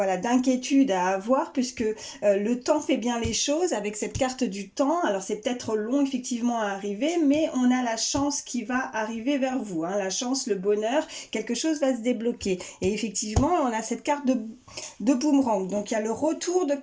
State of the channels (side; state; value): both; identical; correlation 1.00